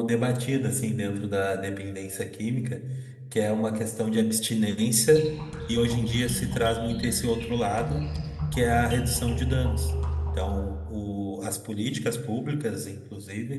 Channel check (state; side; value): identical; both; correlation 1.00